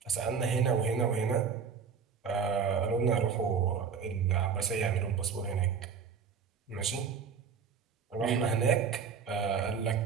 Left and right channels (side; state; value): left; quieter; 6.3 dB